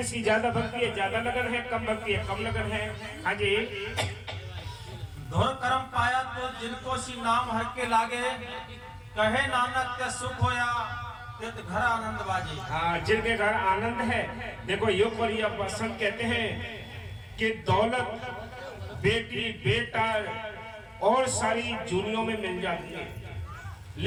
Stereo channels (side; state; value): both; identical; correlation 1.00